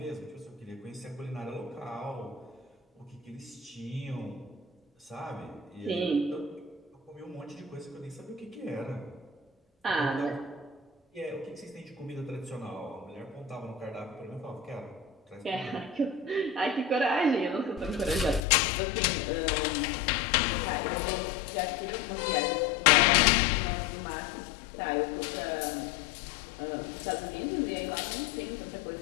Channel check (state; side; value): drops out; right; at 18.4 s